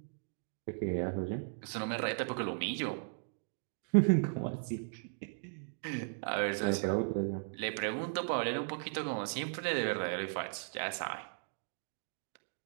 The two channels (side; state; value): left; silent; digital silence